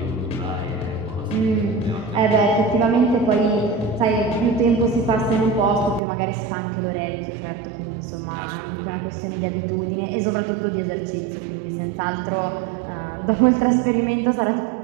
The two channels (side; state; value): left; drops out; at 6.0 s